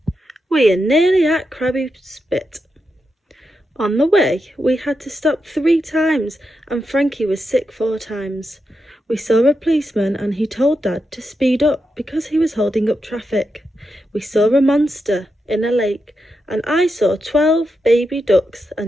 we are nearly at Krabby Spit. On the way, we had to stop 3 times and Frankie was sick 4 times. We saw a policeman and he told Dad to speed up because he was holding up traffic. We saw a monster in a lake and I saw 12 baby ducks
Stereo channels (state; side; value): normal; both; correlation 0.86